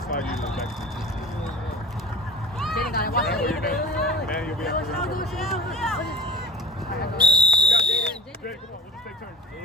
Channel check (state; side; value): normal; both; correlation 0.37